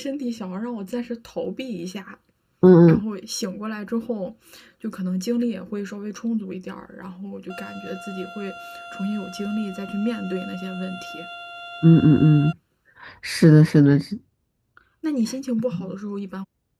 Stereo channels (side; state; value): both; identical; correlation 1.00